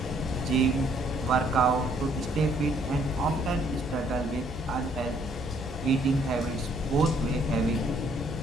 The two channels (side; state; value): both; normal; correlation 0.65